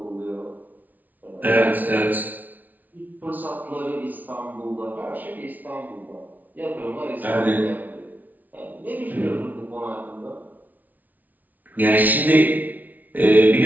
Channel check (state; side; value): late; left; 0.079 ms